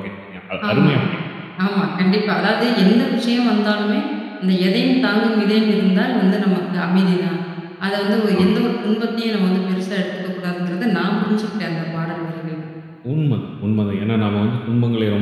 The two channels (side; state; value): both; identical; correlation 1.00